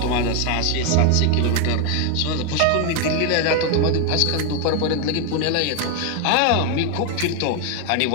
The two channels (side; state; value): both; different; correlation 0.01